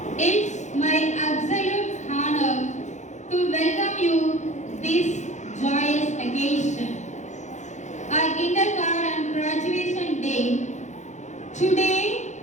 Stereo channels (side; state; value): right; late; 0.34 ms